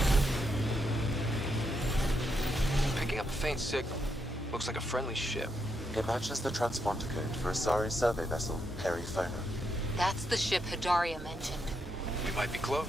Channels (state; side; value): normal; both; correlation 0.80